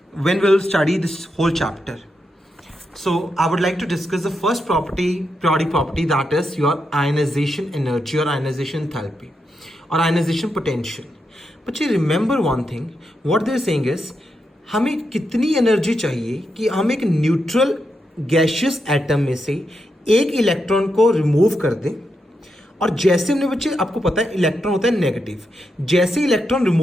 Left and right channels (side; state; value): both; normal; correlation 0.84